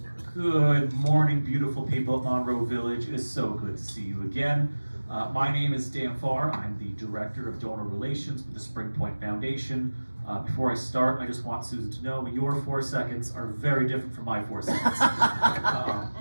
Good morning, beautiful people of Monroe Village. It is so good to see you again. My name is Dan Farr. I'm the Director of Donor Relations with the Spring Point Foundation. Before I start, I just want Susan to know your 4 seconds are very different from my 4 seconds.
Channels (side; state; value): both; inverted; correlation -1.00